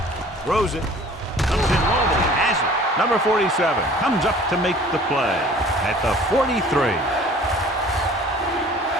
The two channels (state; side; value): normal; both; correlation 0.49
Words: Throws it. Comes in low, but he has it. Number 47 comes up to make the play at the 43.